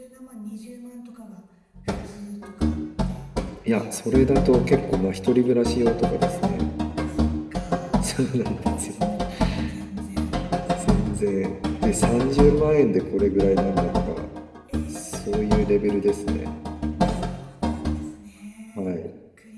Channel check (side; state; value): both; identical; correlation 1.00